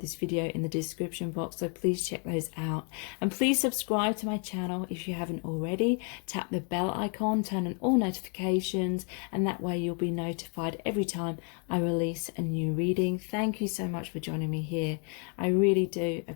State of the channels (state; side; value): quieter; right; 39.5 dB